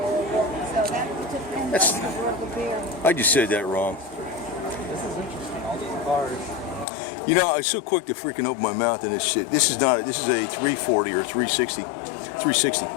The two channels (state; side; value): drops out; right; at 6.9 s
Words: I just said that wrong. You know, I was so quick to freaking open my mouth in this shit. This is a 340 or 360. 360.